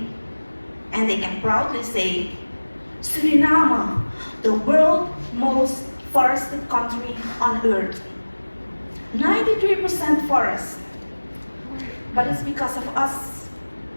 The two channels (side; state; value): both; inverted; correlation -1.00